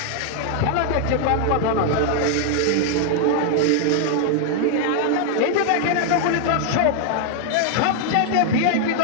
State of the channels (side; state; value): both; different; correlation 0.00